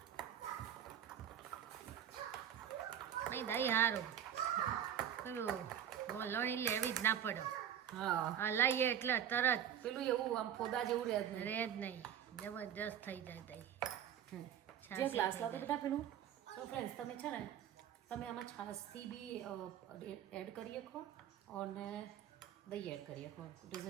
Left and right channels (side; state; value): left; quieter; 9.7 dB